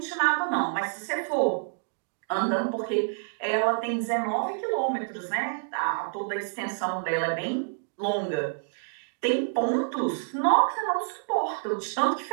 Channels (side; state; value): left; silent; digital silence